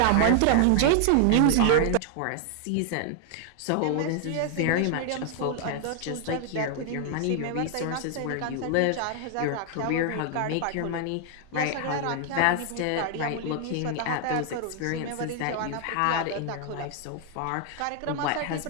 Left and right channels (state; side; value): different; both; correlation 0.00